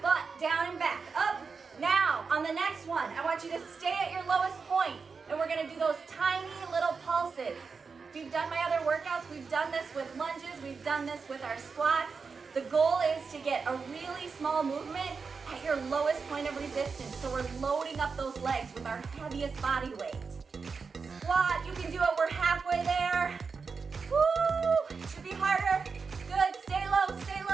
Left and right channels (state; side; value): quieter; left; 5.1 dB